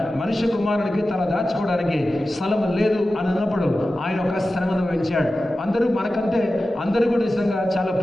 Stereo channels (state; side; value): normal; both; correlation 0.94